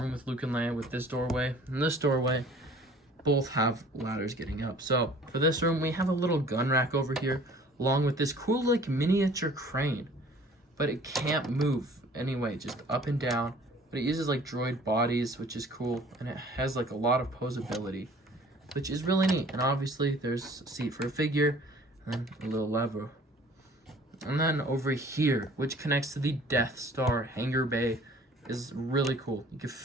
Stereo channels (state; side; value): normal; both; correlation 0.51